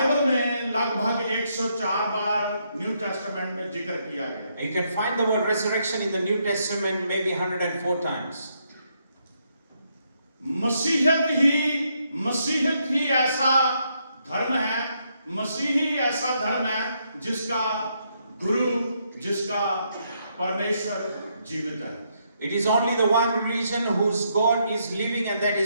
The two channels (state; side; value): inverted; both; correlation -0.76